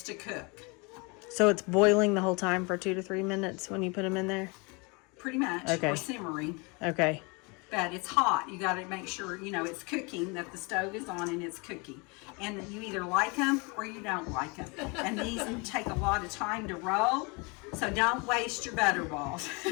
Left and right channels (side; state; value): right; quieter; 29.7 dB